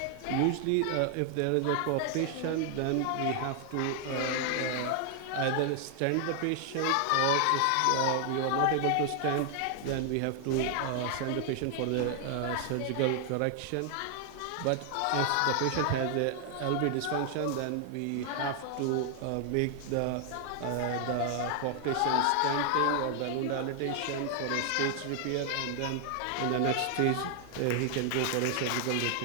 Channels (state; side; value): different; both; correlation 0.00